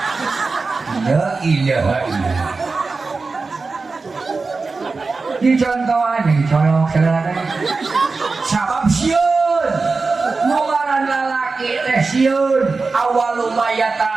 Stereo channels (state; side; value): quieter; left; 4.1 dB